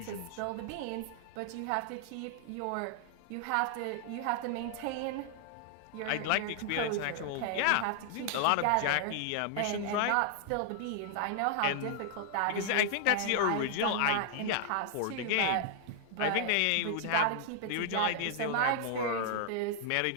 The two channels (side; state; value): both; different; correlation 0.00